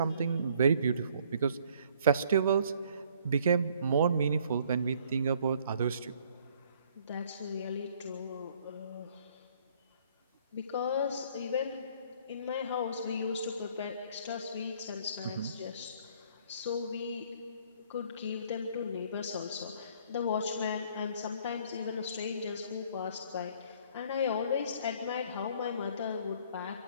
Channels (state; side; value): inverted; both; correlation -0.61